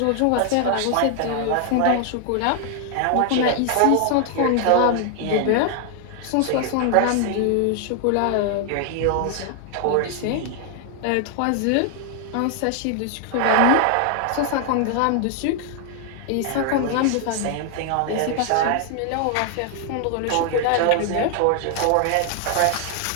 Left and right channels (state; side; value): different; both; correlation 0.00